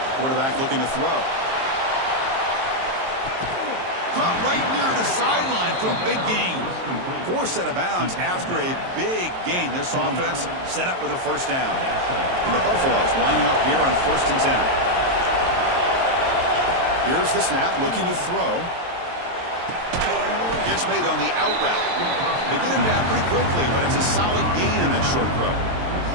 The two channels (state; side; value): late; left; 23 ms